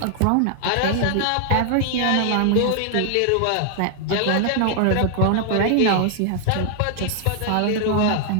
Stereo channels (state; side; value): different; both; correlation 0.00